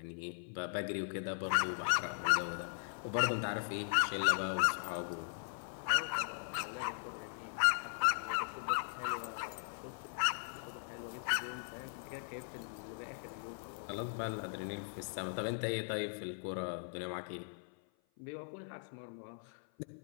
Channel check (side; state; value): right; silent; 52 dB below the other